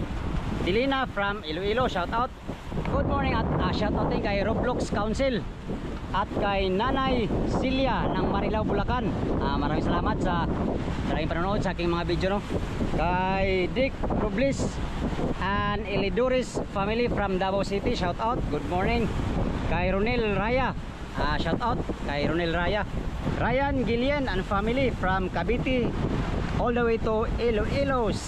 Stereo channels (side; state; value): both; identical; correlation 1.00